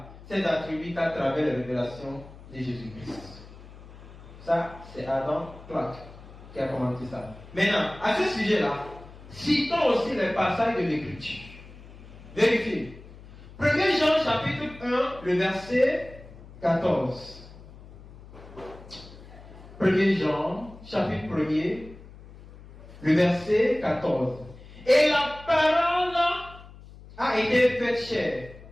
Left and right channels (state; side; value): noise; left; hum, 18 dB below the sound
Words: ses attributs qu'à travers la révélation de Jésus-Christ. Ça, c'est Adam Clark qui a commenté ça. Maintenant, à ce sujet-là, citons aussi les passages de l'Écriture. Vérifiez. 1 Jean chapitre 1, le verset 14. 1 Jean chapitre 1er, le verset 14. Et la parole a été faite chair.